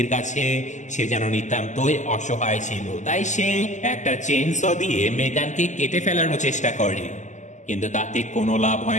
কাছে সে যেন নিতান্তই অসহায় ছিল, তাই সে একটা চেইনস দিয়ে মেগানকে কেটে ফেলানোর চেষ্টা করে। কিন্তু তাতে কোনো লাভ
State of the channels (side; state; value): right; late; 0.35 ms